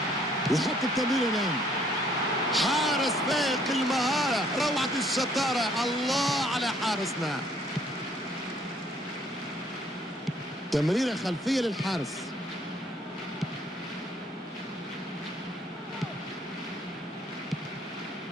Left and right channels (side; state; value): both; normal; correlation 0.63